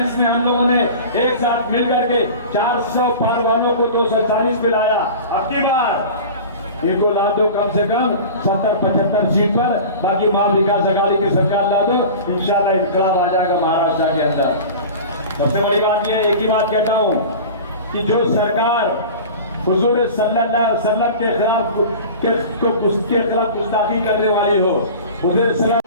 में हम लोगों ने एक साथ मिल करके 400 पार वालों को 240 पे लाया, अब की बार इनको ला दो कम से कम 70-75 सीट पर, बाकी महाविकास अघाड़ी की सरकार ला दो, इंशाल्लाह इनकलाब आ जाएगा महाराष्ट्र के अंदर। सबसे बड़ी बात यह, एक ही बात कहता हूं कि जो सरकार हुजूर सल्लल्लाहु अलैहि वसल्लम के खिलाफ गुस्ताखी करने वाली हो, हुजूर सलाम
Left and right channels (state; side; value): inverted; both; correlation -0.36